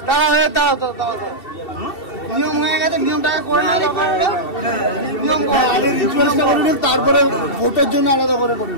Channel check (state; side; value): late; right; 2.7 ms